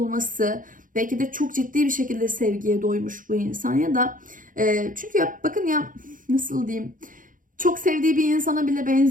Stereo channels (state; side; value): late; left; 0.39 ms